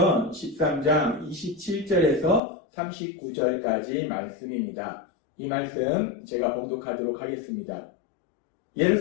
13장 27절에서 39절까지 말씀입니다. 이 말씀 제가 봉독하도록 하겠습니다.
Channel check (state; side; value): drops out; right; at 2.4 s